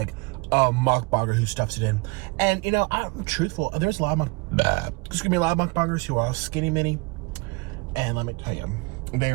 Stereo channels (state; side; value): quieter; left; 27.3 dB